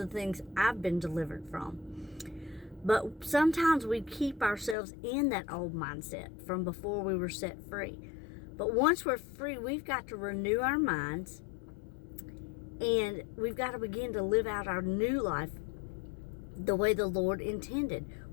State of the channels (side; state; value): right; drops out; at 4.8 s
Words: things I've been delivered from. But sometimes we keep ourselves in that old mindset from before we were set free. But once we're free, we've got to renew our minds, and we've got to begin to live out our new life the way the Lord intended.